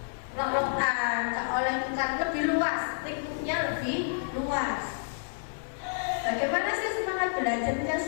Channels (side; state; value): right; silent; 58 dB below the other